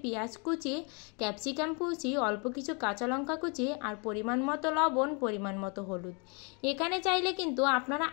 পেঁয়াজ কুচি, ক্যাপসিকাম কুচি, অল্প কিছু কাঁচা লঙ্কা কুচি, আর পরিমাণ মতো লবণ, পরিমাণ মতো হলুদ। এখানে চাইলে কিন্তু আপনারা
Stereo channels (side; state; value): right; quieter; 34.1 dB